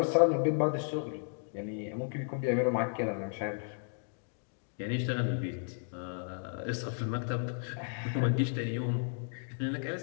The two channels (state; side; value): silent; right; digital silence